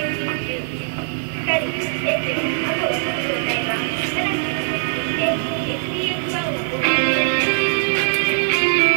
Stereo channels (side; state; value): left; silent; digital silence